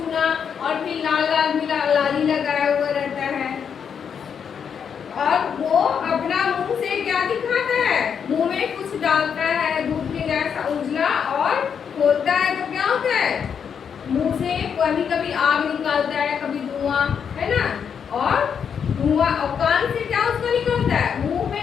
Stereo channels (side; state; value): right; quieter; 7.3 dB